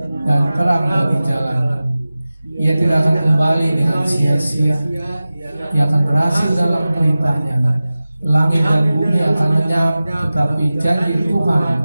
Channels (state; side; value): inverted; both; correlation -0.96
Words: dan terang bagi jalan. Ia tidak akan kembali dengan sia-sia. Ia akan berhasil dalam perintah-Nya. Langit dan bumi akan lenyap, tetapi janji Tuhan